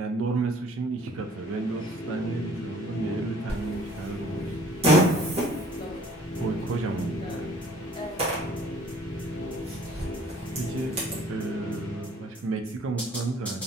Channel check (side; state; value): both; normal; correlation 0.54